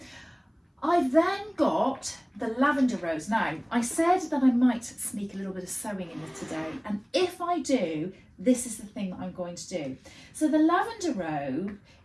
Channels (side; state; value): both; identical; correlation 1.00